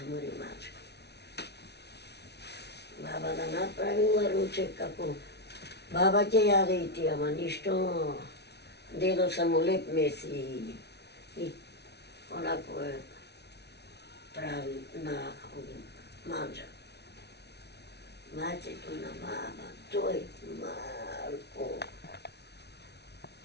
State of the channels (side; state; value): right; late; 0.49 ms